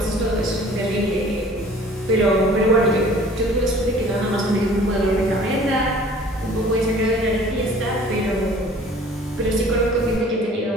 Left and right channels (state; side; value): normal; both; correlation 0.50